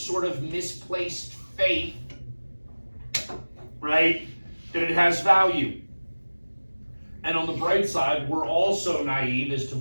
of misplaced faith, right, that it has value. And on the bright side, we're also naive as to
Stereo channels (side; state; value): both; inverted; correlation -1.00